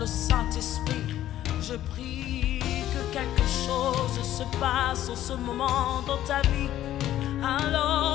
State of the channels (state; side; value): quieter; right; 12.8 dB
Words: Saint-Esprit. Je prie que quelque chose se passe en ce moment dans ta vie,